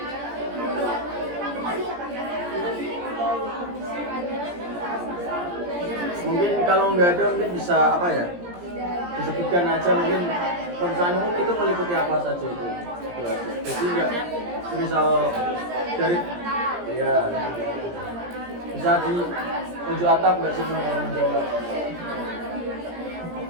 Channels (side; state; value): left; late; 17 ms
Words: Mungkin kalau nggak ada mungkin bisa apa ya, disebutkan aja mungkin pemeriksaan umum itu meliputi apa saja itu aja. Jadi nggak misal dari ya bisa di tunjuk atap nggak semua kalau menjawab.